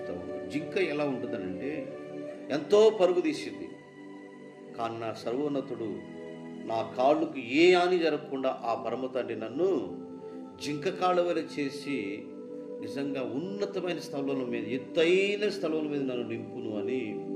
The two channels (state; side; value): identical; both; correlation 1.00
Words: ఉంది. జింక ఎలా ఉంటుందనంటే ఎంతో పరుగు తీసింది, కానీ నా సర్వోన్నతుడు నా కాళ్ళకు ఏ హాని జరగకుండా ఆ పరమ తండ్రి నన్ను జింక కాళ్ళ వలె చేసి నిజంగా ఉన్నతమైన స్థలముల మీద, ఎత్తైన స్థలముల మీద నన్ను నింపును అని